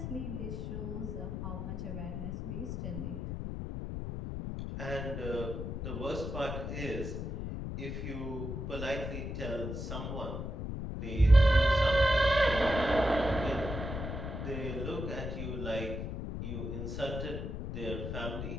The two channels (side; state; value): left; noise; rumble, 5 dB below the sound